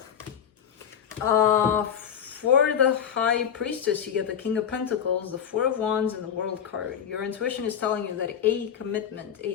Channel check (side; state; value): right; quieter; 8.4 dB